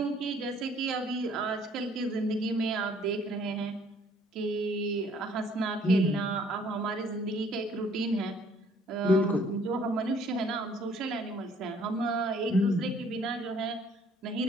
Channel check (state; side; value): normal; both; correlation 0.60